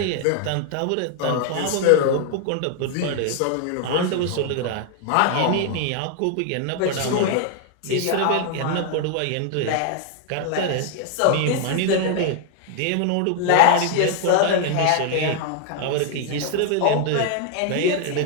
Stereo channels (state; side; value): different; both; correlation 0.00